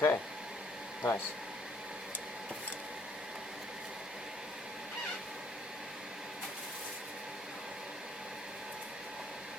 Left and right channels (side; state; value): both; normal; correlation 0.64